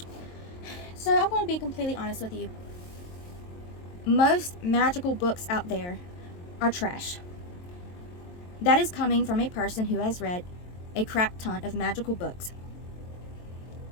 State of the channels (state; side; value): late; right; 23 ms